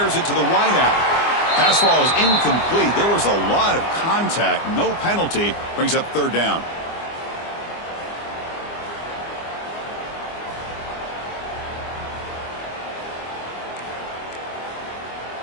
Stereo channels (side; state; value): right; late; 24 ms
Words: it to the wideout. Pass ball is incomplete. There was a lot of contact. No penalty. Brings up 3rd down.